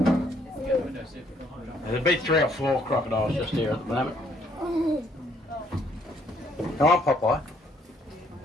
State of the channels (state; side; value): normal; both; correlation 0.66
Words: There'll be 3 or 4 crocodiles just here at the moment. Come on, Popeye.